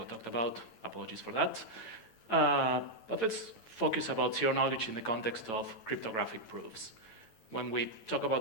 talked about. Apologies for that. But let's focus about zero knowledge in the context of cryptographic proofs. When we talk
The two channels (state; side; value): late; right; 8.9 ms